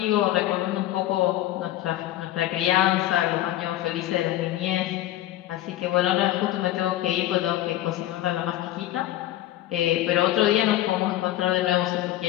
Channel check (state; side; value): quieter; right; 14.3 dB